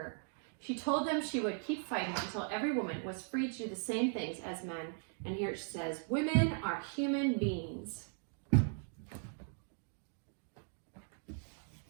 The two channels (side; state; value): left; silent; 52 dB below the other